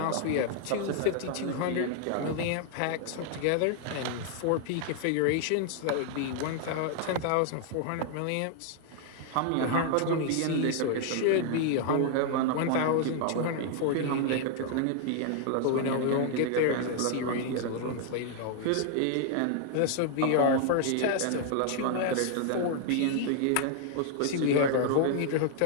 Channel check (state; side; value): different; both; correlation 0.00